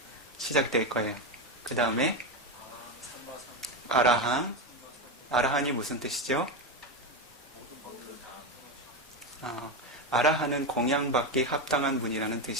시작될 거예요. 그 다음에 아라한. 아라한이 무슨 뜻이죠? 아라한은 공양받기 합당한 분이라는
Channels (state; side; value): normal; both; correlation 0.13